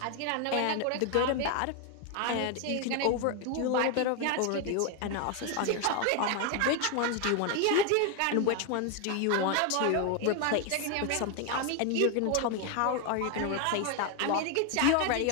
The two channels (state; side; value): different; both; correlation 0.01